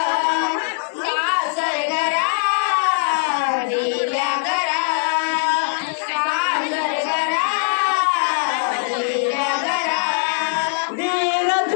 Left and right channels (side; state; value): right; silent; digital silence